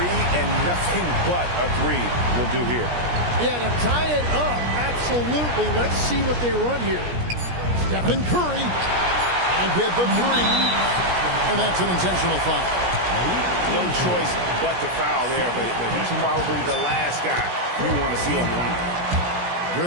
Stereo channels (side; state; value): left; late; 17 ms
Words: and nothing but a three will do here. Yeah, to tie it up, absolutely. Let's see what they run here. Stephen Curry. And get the three. And that's an intentional foul. No choice but to foul there, but he's probably the last guy you want to see on the line.